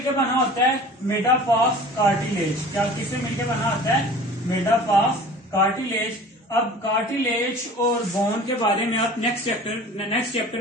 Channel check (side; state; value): both; normal; correlation 0.43